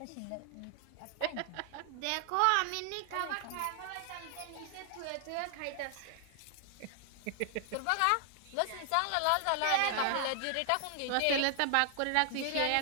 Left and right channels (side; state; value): both; different; correlation 0.00